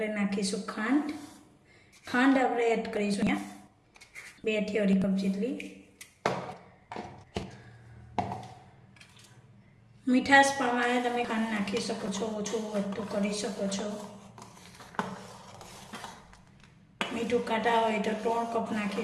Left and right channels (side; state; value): both; identical; correlation 1.00